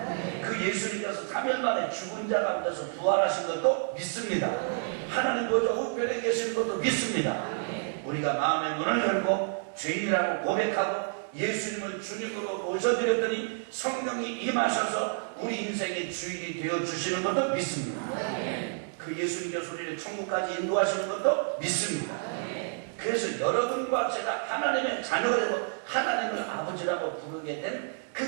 그 예수님께서 3일 만에 죽은 자 가운데서 부활하신 것도 믿습니다. 하나님 보좌 우편에 계시는 것도 믿습니다. 우리가 마음의 문을 열고 죄인이라고 고백하고 예수님을 주님으로 모셔드렸더니 성령이 임하셔서 우리 인생의 주인이 되어주시는 것도 믿습니다. 그 예수님께서 우리를 천국까지 인도하시는 것도 믿습니다. 그래서 여러분과 제가 하나님의 자녀가 되고 하나님을 아버지라고 부르게 된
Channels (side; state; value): left; silent; digital silence